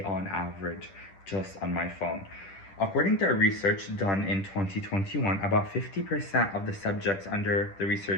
on average just on my phone. According to a research done in 2021, about 50% of the subjects under the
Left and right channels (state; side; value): late; right; 10 ms